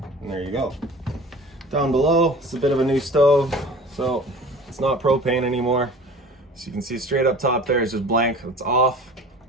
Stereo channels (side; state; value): both; normal; correlation 0.42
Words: and there you go. Down below, it's a bit of a new stove, so it's not propane anymore. So you can see straight up top there is just blank, it's off.